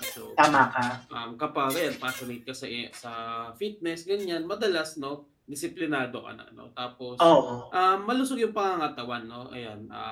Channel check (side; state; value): both; identical; correlation 1.00